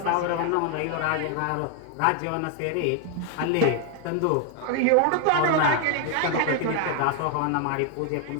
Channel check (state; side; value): different; both; correlation 0.01